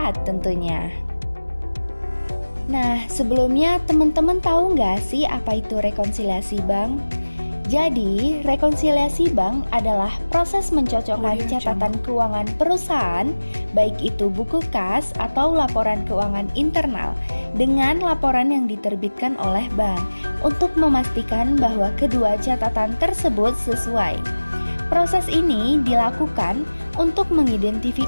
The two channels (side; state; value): both; inverted; correlation -1.00